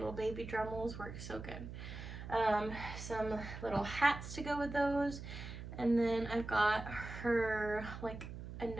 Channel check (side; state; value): right; noise; hum, 10 dB below the sound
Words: baby Dremels work so good. Some little hats to go with those. And then I've got her like